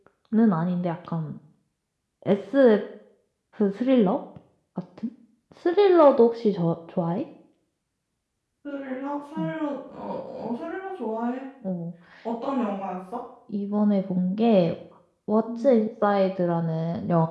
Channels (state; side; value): identical; both; correlation 1.00